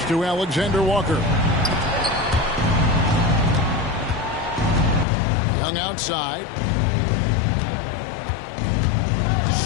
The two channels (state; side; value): drops out; right; at 5.1 s